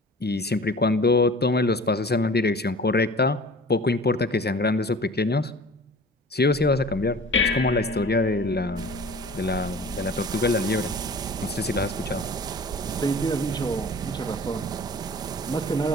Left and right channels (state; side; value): normal; both; correlation 0.43